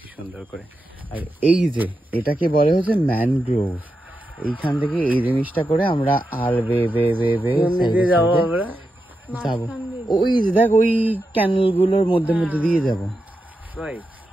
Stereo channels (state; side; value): normal; both; correlation 0.88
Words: সুন্দর করে। আর এই যে এটাকে বলে হচ্ছে ম্যানগ্রোভ, এইখান থেকে এই জিনিসটা করে আমরা আর যাবো। ওই দেখ ওই ক্যানেল গুলোর মধ্যে দিয়ে যাবো।